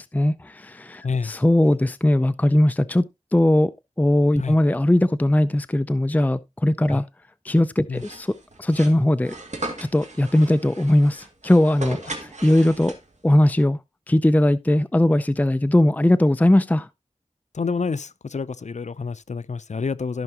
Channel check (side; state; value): both; normal; correlation 0.97